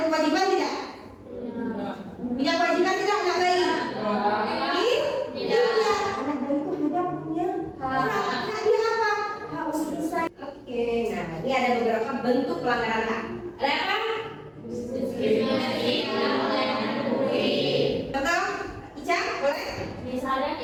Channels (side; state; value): both; identical; correlation 1.00